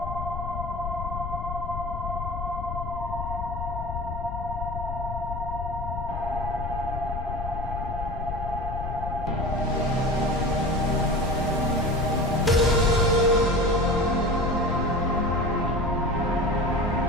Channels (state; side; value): noise; left; rumble, 5 dB below the sound